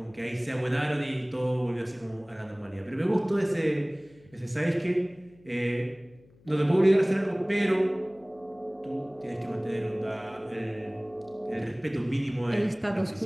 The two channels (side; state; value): left; noise; hum, 28 dB below the sound